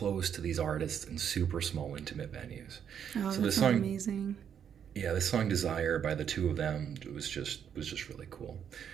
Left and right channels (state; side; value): quieter; left; 8.4 dB